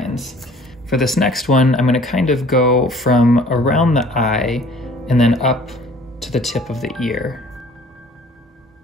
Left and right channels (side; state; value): both; normal; correlation 0.52